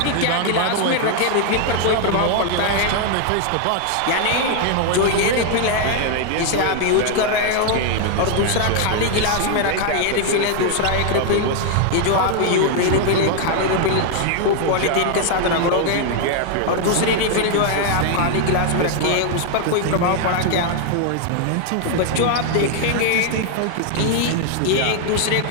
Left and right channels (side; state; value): both; different; correlation 0.00